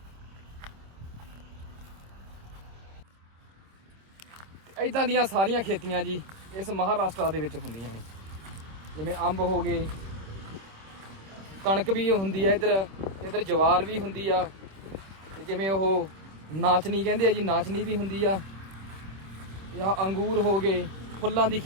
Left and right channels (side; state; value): left; late; 26 ms